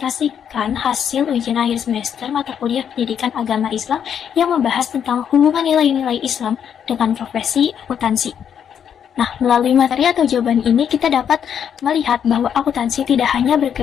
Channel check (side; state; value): right; quieter; 8.4 dB